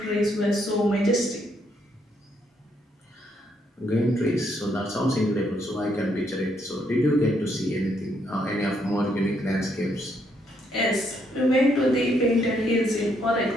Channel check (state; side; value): normal; both; correlation 0.73